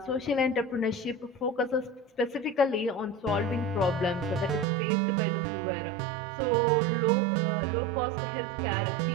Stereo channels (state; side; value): drops out; left; at 4.7 s